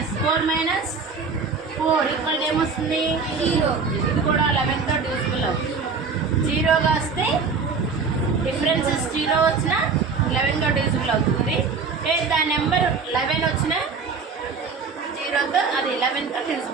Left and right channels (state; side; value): quieter; left; 5.0 dB